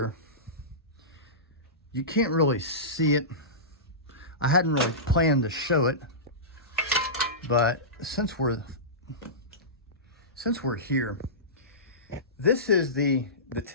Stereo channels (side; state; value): both; normal; correlation -0.20